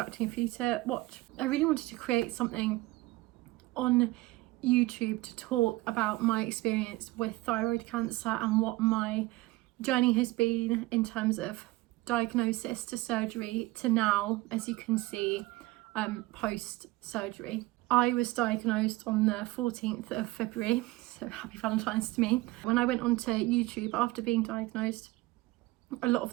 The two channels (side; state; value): left; quieter; 19.7 dB